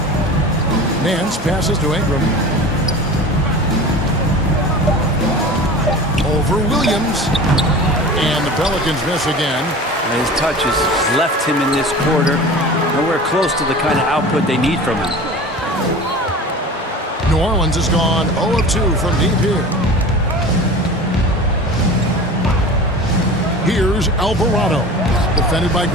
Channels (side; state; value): both; normal; correlation 0.36